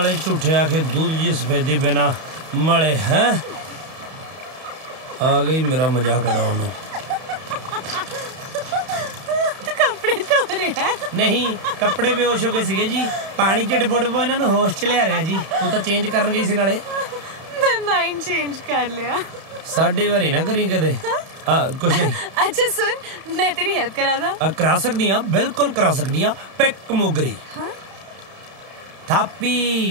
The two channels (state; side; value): late; left; 31 ms